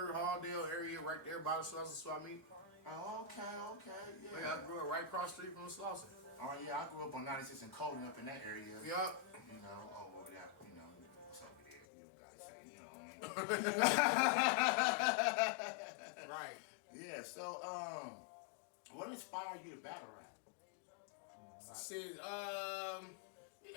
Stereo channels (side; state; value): right; drops out; at 11.9 s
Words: Halldale area right there by the Slauson Swap Meet. Oh, okay, okay, yeah. Yeah, I grew up right across the street from the Slauson. Oh, yeah, I grew up on 96 and Colden up in that area. Yup. You know, over that, what's over there? You don't gotta say, you know what I mean? Right. Yeah, so, what inspired you to battle rap? Shit,